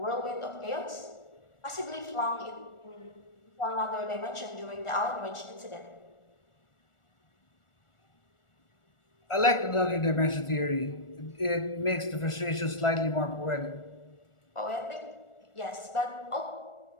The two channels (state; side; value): late; right; 1.4 ms